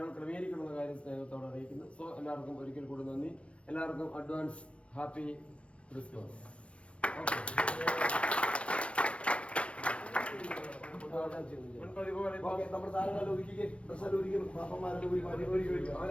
ക്രമീകരിക്കണമെന്ന കാര്യം സ്നേഹത്തോടെ അറിയിക്കുന്നു. സോ എല്ലാവർക്കും ഒരിക്കൽ കൂടി നന്ദി. എല്ലാവർക്കും അഡ്വാൻസ് ഹാപ്പി ക്രിസ്മസ്. നമ്മുടെ താരങ്ങളെ ഒരുക്കി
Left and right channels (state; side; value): late; right; 0.060 ms